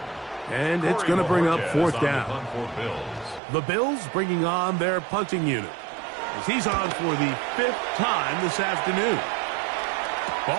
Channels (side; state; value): left; drops out; at 3.4 s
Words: And it's going to bring up fourth down. The Bills bringing on their punting unit, as he's on for the 5th time this afternoon.